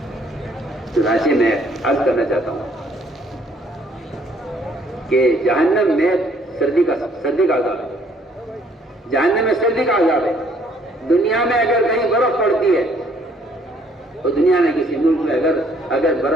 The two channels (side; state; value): both; normal; correlation 0.63